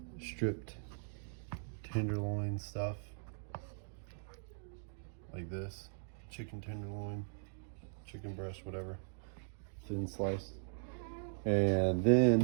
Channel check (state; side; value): silent; left; digital silence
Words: stripped tenderloin stuff, like this, chicken tenderloin, chicken breast, whatever, thin slice. And